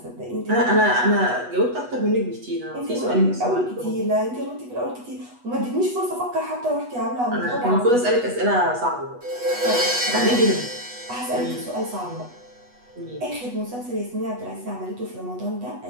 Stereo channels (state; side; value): late; left; 8.2 ms